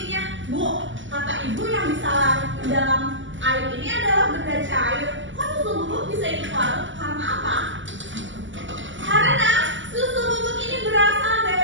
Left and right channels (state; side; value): late; left; 0.55 ms